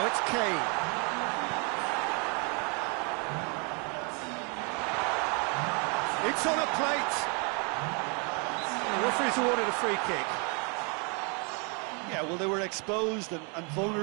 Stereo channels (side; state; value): left; quieter; 34.8 dB